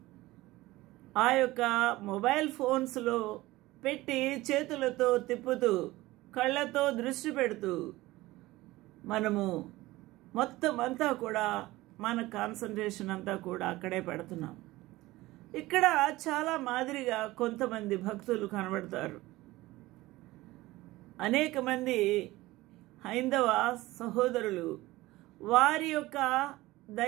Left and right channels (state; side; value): quieter; left; 18.7 dB